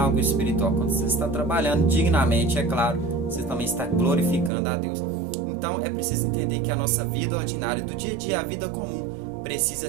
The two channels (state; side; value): drops out; left; at 4.5 s